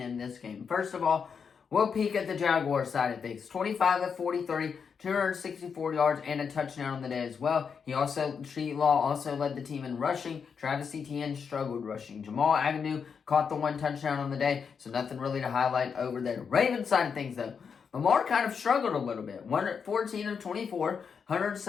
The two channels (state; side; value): quieter; right; 6.3 dB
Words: in this game. First of all, we'll peek at the Jaguars side of things. 25 of 43, 264 yards, and a touchdown on the day as well. T-Law also led the team in rushing. Travis Etienne struggled rushing. Jamal Agnew caught the 1 touchdown on the day, so nothing really to highlight over there. Ravens side of things, though. Lamar kind of struggled a little bit. 14 of 24,